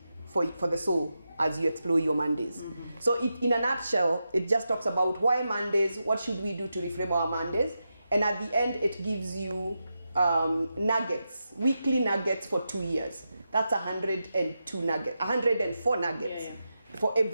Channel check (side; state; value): both; inverted; correlation -0.88